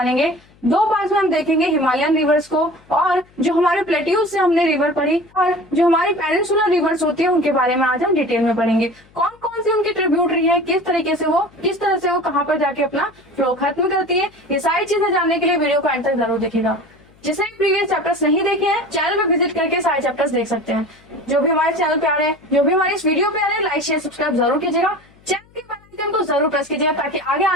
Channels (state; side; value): noise; left; hum, 29 dB below the sound